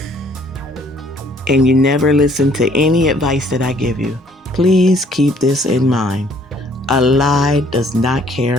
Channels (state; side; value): normal; both; correlation 0.61